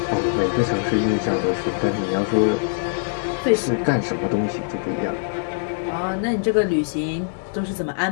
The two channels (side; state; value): right; silent; digital silence